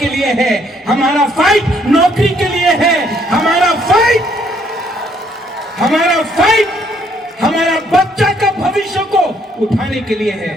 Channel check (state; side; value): normal; both; correlation 0.68